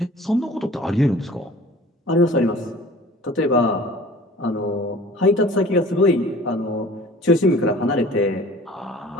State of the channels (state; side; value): normal; both; correlation 0.45